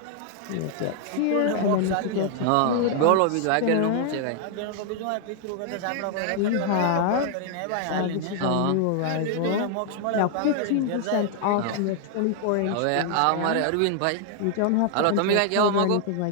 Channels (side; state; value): both; different; correlation 0.00